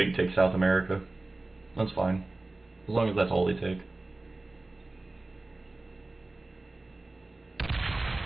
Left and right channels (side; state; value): left; quieter; 3.0 dB